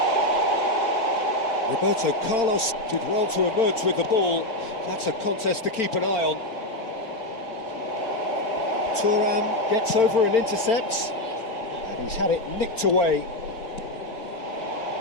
Roberto Carlos did well to emerge with the ball. That's a contest to keep an eye on. Thuram gets over and intercepts, and he's had it nicked away.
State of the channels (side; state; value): right; late; 4.4 ms